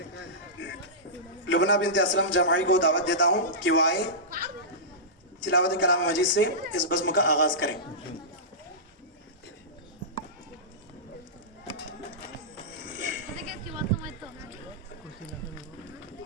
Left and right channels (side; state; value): both; normal; correlation -0.17